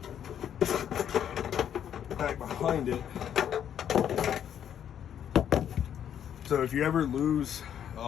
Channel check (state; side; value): quieter; right; 9.5 dB